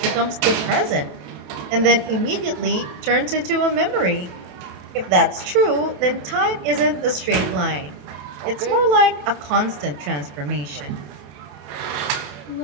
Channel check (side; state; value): left; late; 27 ms